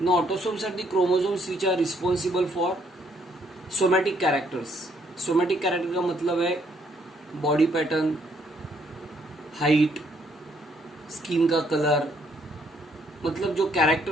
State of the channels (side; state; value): both; normal; correlation 0.69